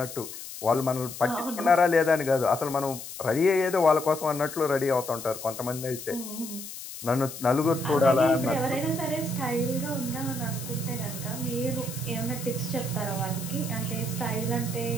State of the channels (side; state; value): left; noise; hiss, 11 dB below the sound